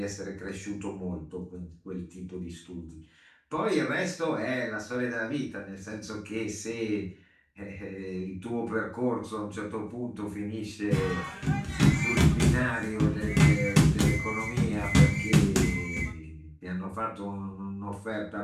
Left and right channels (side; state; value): both; identical; correlation 1.00